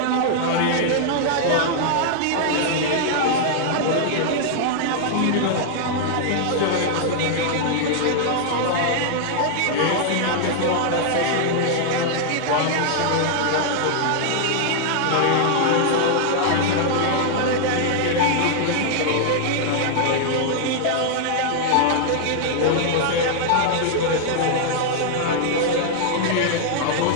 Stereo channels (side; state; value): both; different; correlation -0.01